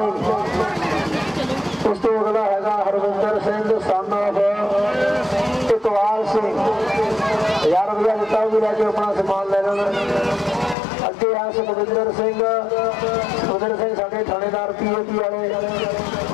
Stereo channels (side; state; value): right; drops out; at 10.8 s